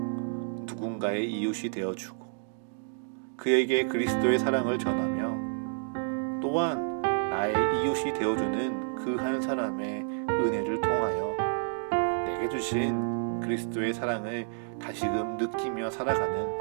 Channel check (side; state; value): left; silent; digital silence